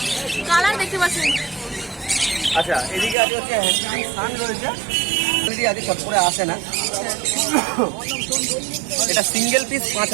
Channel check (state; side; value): drops out; left; at 3.2 s